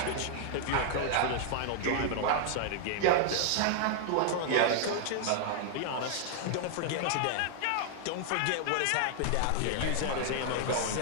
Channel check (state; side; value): different; both; correlation 0.00